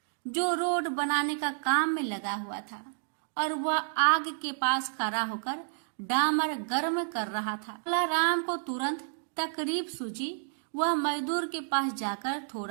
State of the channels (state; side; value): silent; left; digital silence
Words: जो रोड बनाने का काम में लगा हुआ था, और वह आग के पास खड़ा होकर डामर गर्म कर रहा था। भोला राम को तुरंत तकलीफ सूझी। वह मजदूर के पास जाकर